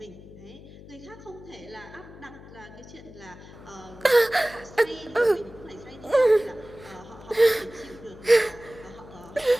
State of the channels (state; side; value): noise; left; hum, 18 dB below the sound